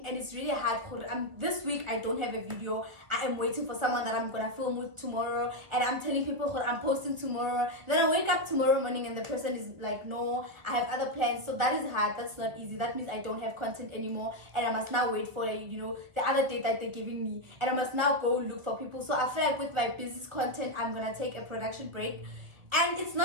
and it's really hard. This week I don't have a video. I am waiting for someone that I'm gonna film with tomorrow, and I'm telling people I'm posting tomorrow. Then I wake up tomorrow morning and the person is like, no, I have other plans. So that is hard. That's not easy. That means I don't have content anymore, and I must now wait for, you know, the other date that they're giving me, and I must now go look for people. So I feel like with my business content, I'm gonna take a production break. And it's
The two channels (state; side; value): late; left; 1.7 ms